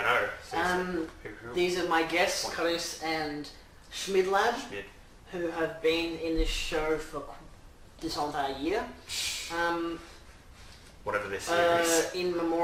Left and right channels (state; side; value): identical; both; correlation 1.00